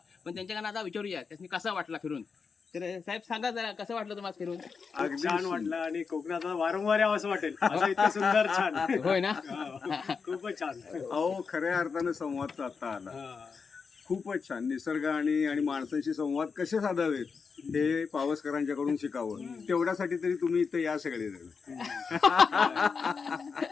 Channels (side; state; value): right; quieter; 5.4 dB